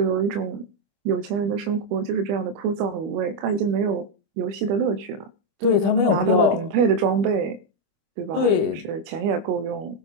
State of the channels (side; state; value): left; late; 25 ms